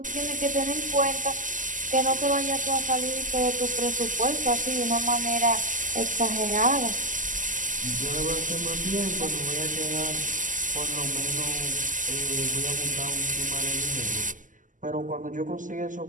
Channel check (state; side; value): late; left; 0.38 ms